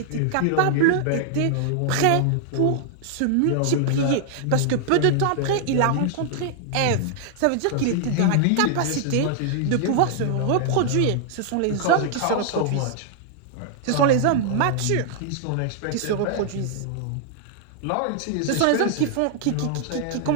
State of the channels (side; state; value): both; different; correlation 0.00